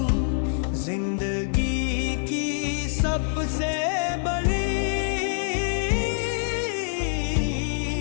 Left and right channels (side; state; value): right; silent; 61 dB below the other